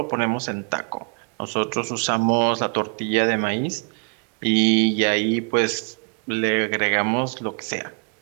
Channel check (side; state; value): left; quieter; 39.8 dB